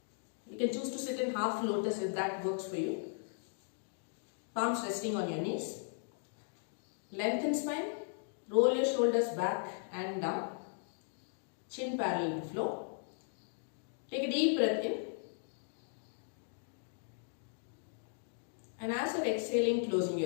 You can choose to sit in half lotus if that works for you. Palms resting on your knees. Lengthen spine. Roll your shoulders back and down. Chin parallel to floor. Take a deep breath in. And as you're exhaling, closing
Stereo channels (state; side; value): silent; right; digital silence